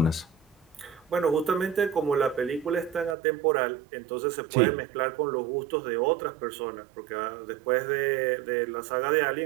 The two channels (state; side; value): drops out; left; at 3.2 s